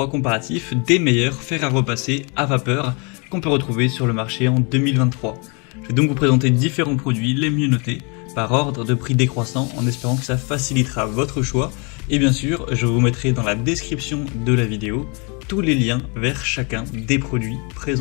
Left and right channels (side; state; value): right; quieter; 32.9 dB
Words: comparatif des meilleurs fers à repasser à vapeur qu'on peut retrouver sur le marché en 2023. Je vais donc vous présenter différents produits les mieux notés par ordre de prix décroissant en espérant que ça facilitera votre choix. Et bien sûr, je vous mettrai dans la description de la vidéo tous les liens vers chacun des produits